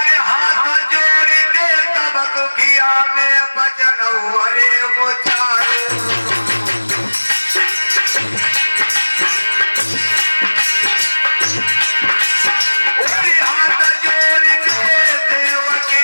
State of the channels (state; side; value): inverted; both; correlation -1.00